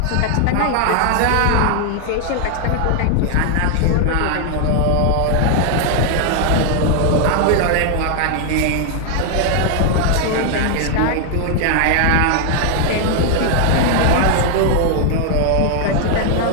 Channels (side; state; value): both; different; correlation 0.00